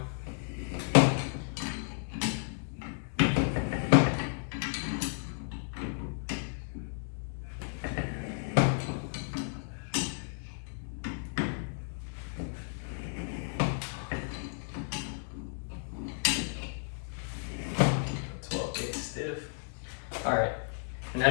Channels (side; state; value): right; silent; 56 dB below the other